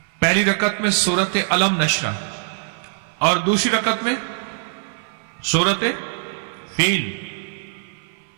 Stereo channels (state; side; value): silent; left; 57 dB below the other